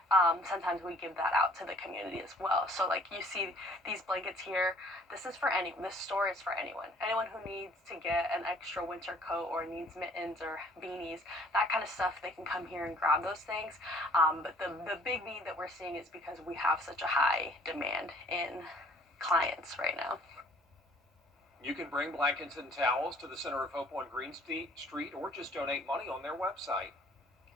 sometimes we give that out to the community as well. So like you see these blankets here, this is for anyone. This store is for anyone. Anyone who needs to get an extra winter coat or needs mittens or beanies, that kind of stuff, they can come here and grab those things. But the big need that we're seeing is because we have such a high demand in clients right now. You can bring blankets and towels to the Center of Hope on Green Street or just donate money on their website.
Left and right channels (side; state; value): both; normal; correlation 0.56